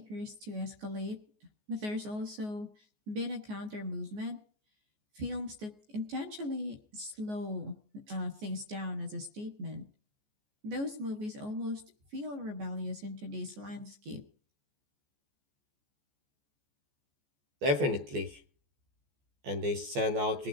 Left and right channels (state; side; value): late; left; 14 ms